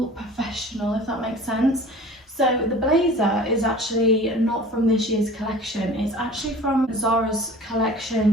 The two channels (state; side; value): normal; both; correlation 0.43